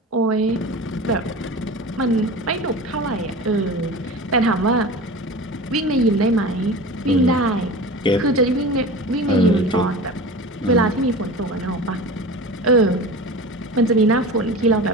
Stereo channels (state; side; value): normal; both; correlation 0.33